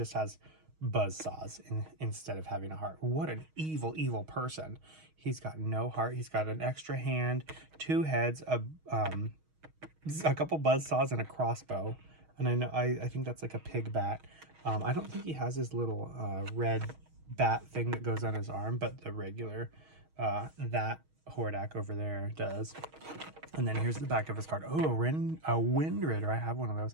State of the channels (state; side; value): late; left; 6.3 ms